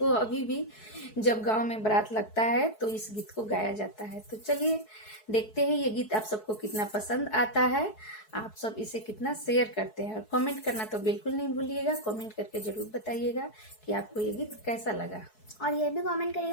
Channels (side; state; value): right; late; 4.7 ms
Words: अभी भी जब गांव में बारात लगता है तो इस गीत को गाया जाता है। तो चलिए देखते हैं ये गीत आप सबको कितना पसंद आता है, आप सब इसे कितना शेयर करते हैं। और कमेंट करना तो बिल्कुल नहीं भूलिएगा, कमेंट करके जरूर बताइएगा कि आपको ये गीत कैसा लगा। और ये भी कमेंट